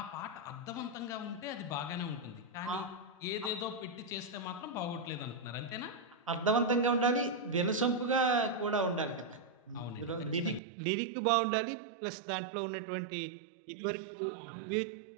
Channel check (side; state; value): left; drops out; at 10.6 s